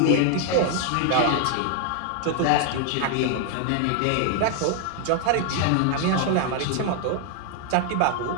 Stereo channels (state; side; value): different; both; correlation 0.00